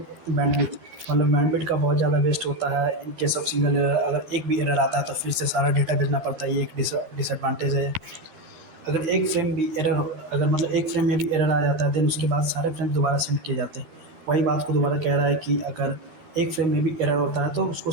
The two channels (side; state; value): left; late; 13 ms